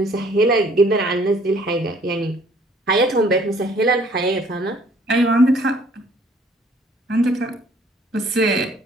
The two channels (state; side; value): normal; both; correlation 0.59